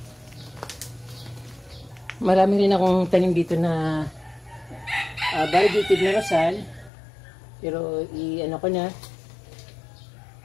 Marami rin akong tanim dito na variegated na rosal. Pero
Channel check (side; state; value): right; drops out; at 6.9 s